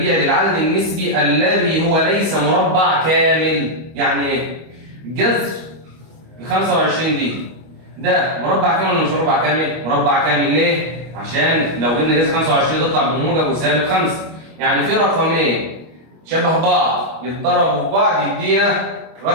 للعدد النسبي الذي هو ليس مربع كامل؟ يعني ايه؟ جذر ال 25 دي ده مربع كامل ولا مش مربع كامل؟ مربع كامل. ليه؟ عشان لو جبنا جذر 25 تطلع بموجب وسالب 5. يعني في رقمين شبه بعض يتضربوا في بعض يدينا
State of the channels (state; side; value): late; left; 25 ms